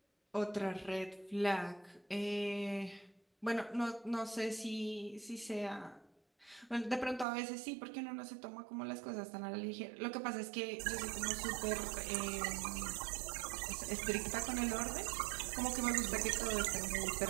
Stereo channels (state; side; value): drops out; left; at 7.2 s